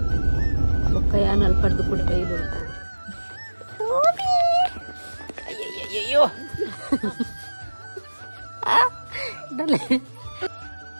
ಬೊಕ್ಕ ಯಾನಲ್ಲಿ ಪಡೆದು ಕೂಡ ಬೈಲು ಅಯ್ಯಯ್ಯಯ್ಯೋ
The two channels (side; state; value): both; inverted; correlation -1.00